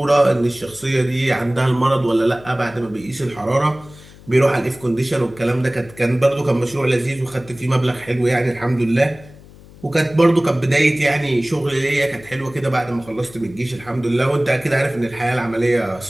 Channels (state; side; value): noise; left; hum, 21 dB below the sound